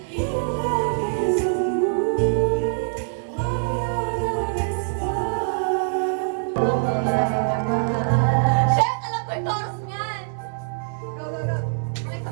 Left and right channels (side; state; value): left; silent; 63 dB below the other